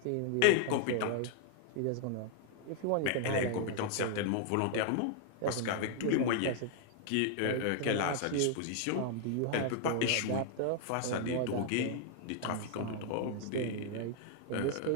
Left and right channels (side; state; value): both; different; correlation 0.00